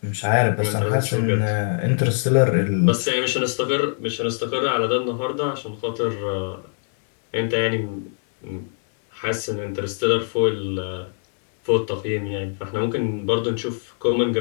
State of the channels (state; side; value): silent; right; digital silence